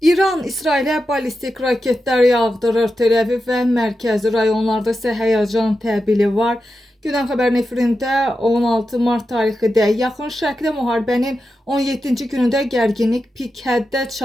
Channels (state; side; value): normal; both; correlation 0.90